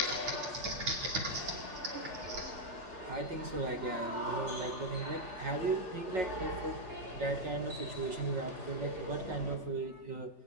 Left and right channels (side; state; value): left; late; 3.4 ms